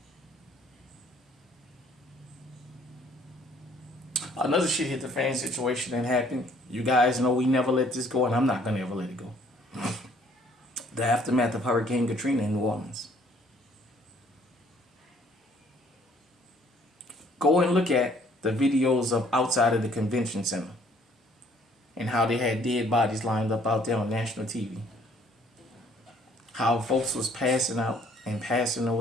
Another shit hit the fan situation that happened. You guys know we never let this go, and I'm not going to ever let it go. The aftermath of Hurricane Katrina in New Orleans. Go and look at the videos of outside of the convention center and how they had dead bodies lined up out there on national TV. How folks was passing out and passing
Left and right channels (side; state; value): both; normal; correlation 0.61